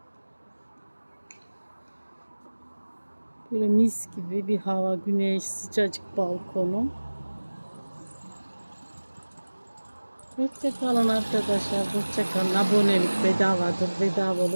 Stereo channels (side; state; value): both; inverted; correlation -1.00